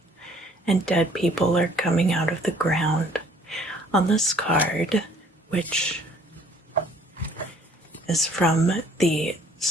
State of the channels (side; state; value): both; normal; correlation 0.58